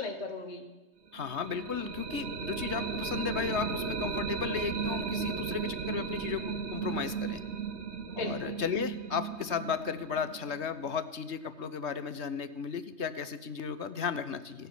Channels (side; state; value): left; late; 3.2 ms